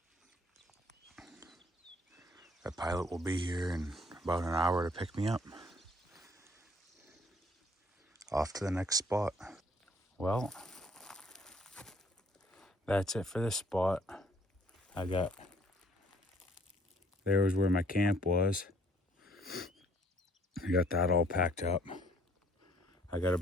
The pilot will be here in about an hour to pick me up. Off to the next spot. Well, that's it for this spot. There was where my camp was. I got that all packed up. I got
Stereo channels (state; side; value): normal; both; correlation 0.62